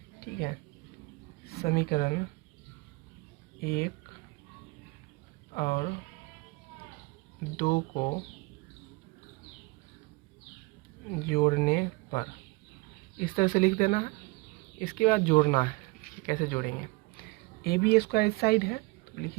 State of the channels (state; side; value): quieter; left; 24.8 dB